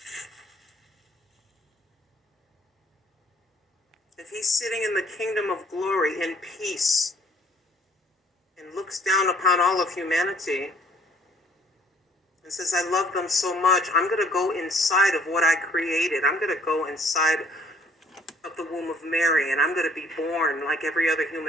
If he's sitting in the kingdom of glory in peace and looks down upon all of humanity and says, I love them so much, I'm going to go inside of what I created. I'm going to go inside of the womb of Mary, and I'm going to be born like every other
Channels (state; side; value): normal; both; correlation 0.59